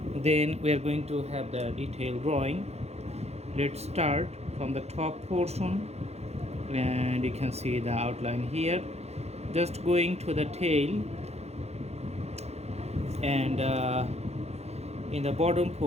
Then we're going to have the detailed drawing. Let's start from the top portion, and you can see the outline here. Just going to the tail, and in the bottom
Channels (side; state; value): left; late; 0.31 ms